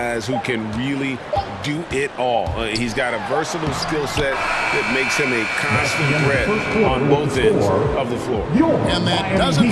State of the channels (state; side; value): identical; both; correlation 1.00